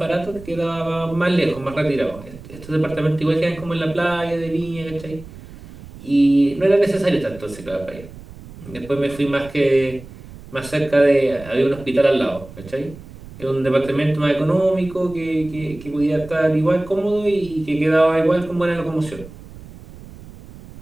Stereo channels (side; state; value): right; noise; rumble, 17 dB below the sound